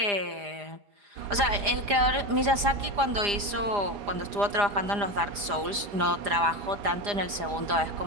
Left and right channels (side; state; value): left; late; 4.9 ms